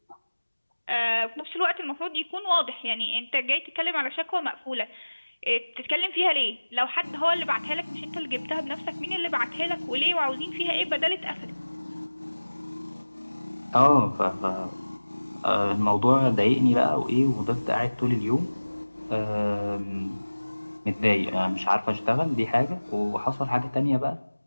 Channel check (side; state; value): both; inverted; correlation -1.00